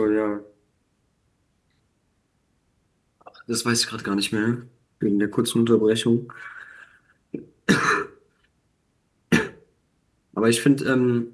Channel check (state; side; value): identical; both; correlation 1.00